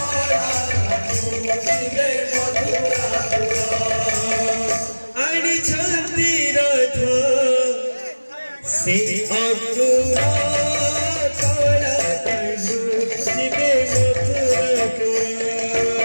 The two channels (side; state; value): both; inverted; correlation -1.00